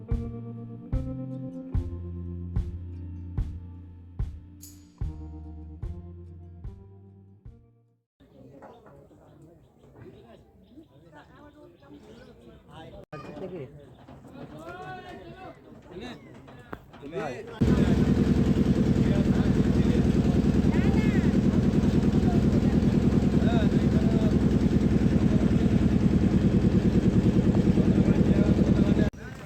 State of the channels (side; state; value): both; identical; correlation 1.00